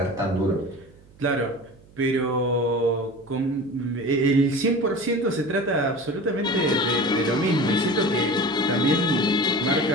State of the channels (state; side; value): noise; right; hum, 26 dB below the sound